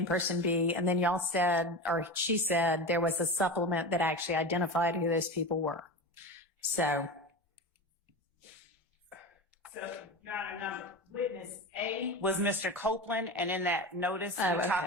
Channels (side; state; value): both; normal; correlation 0.26